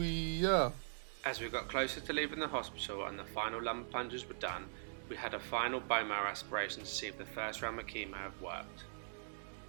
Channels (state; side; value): silent; left; digital silence